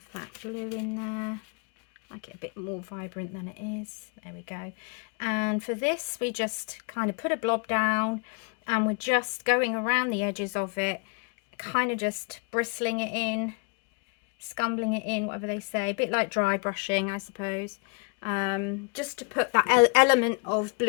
that blue in there, make it a bit more vibrant than it is. There we go. And for this we just kind of put a blob down and we're just going around the edges of it, kind of just bristling it in, scumbling it in, whatever they say, a bit like dry brushing, I suppose, just to put that element of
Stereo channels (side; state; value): right; quieter; 34.7 dB